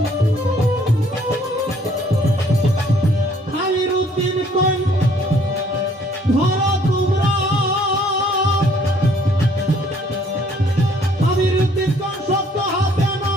আমিরউদ্দিন কই ধরো তোমরা, আমিরউদ্দিন কোন সত্য হাতে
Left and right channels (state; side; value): normal; both; correlation 0.61